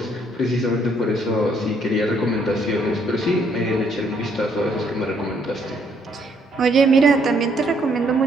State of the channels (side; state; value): both; normal; correlation 0.68